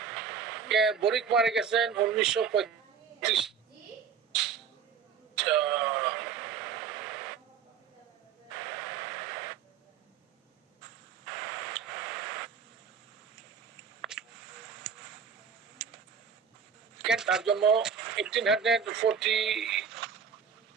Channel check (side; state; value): left; quieter; 6.8 dB